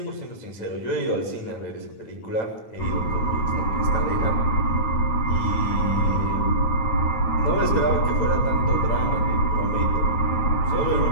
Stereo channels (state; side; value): late; right; 9.0 ms